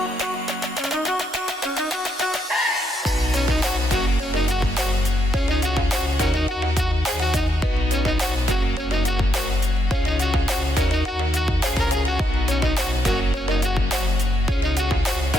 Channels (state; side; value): normal; both; correlation 0.77